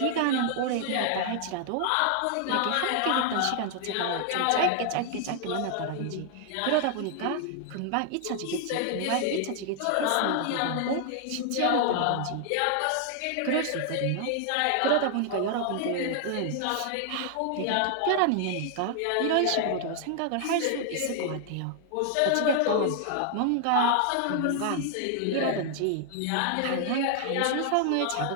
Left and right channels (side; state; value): both; different; correlation 0.00